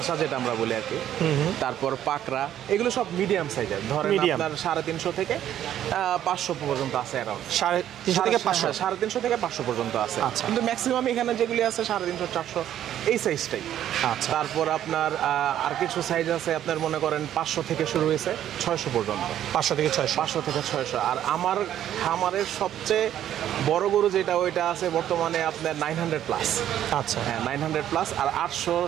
যেটা আমরা বলি আর কি। তারপর পাকড়া, এগুলো সব মিডিয়াম সাইজের, ধরেন আপনার 350 থেকে 500 পর্যন্ত আছে। অ্যারাউন্ড 350 থেকে 500 পর্যন্ত আছে, কিন্তু ম্যাক্সিমাম এখানে যেগুলি আছে 350 400 এই সাইজটাই। আচ্ছা, তারপর আপনার আর কিছু সাইজ আছে আপনার মনে করেন 500 থেকে শুরু হয়েছে 600 পর্যন্ত। 500 থেকে 600। আর আমার খামারের সবচেয়ে বড় গরু যেটা, ওইটা আছে বর্তমানে আপনার 900 প্লাস। আচ্ছা, হ্যাঁ 900 প্লাস, আর 800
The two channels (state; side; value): quieter; left; 11.2 dB